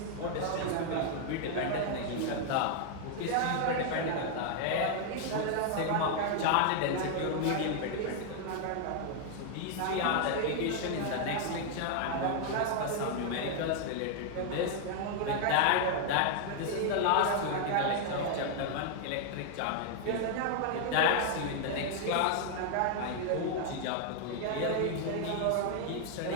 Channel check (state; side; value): different; both; correlation 0.00